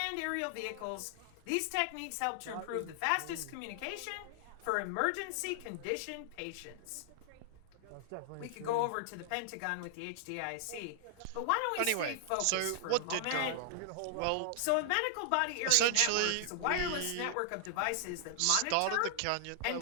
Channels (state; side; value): different; both; correlation -0.01